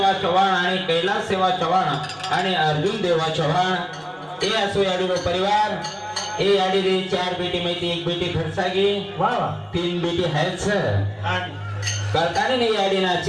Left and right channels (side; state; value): both; identical; correlation 1.00